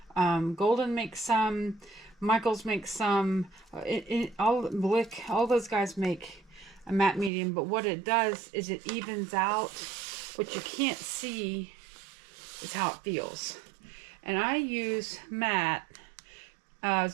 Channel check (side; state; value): left; drops out; at 7.3 s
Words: Golden makes some. Michaels makes some. All those guys make a matte medium. But what it does is it evens out. What you can't see is how it feels. And I use matte as